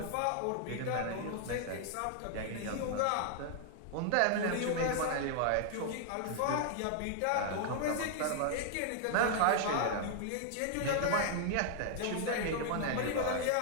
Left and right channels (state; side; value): different; both; correlation 0.00